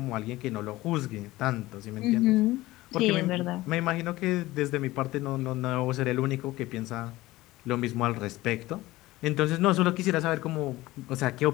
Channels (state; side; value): quieter; right; 18.2 dB